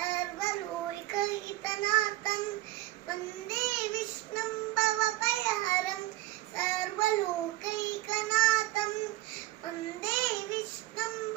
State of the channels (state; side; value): quieter; left; 17.5 dB